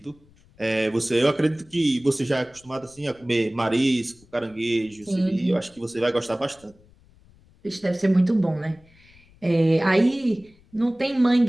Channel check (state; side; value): noise; left; rumble, 29 dB below the sound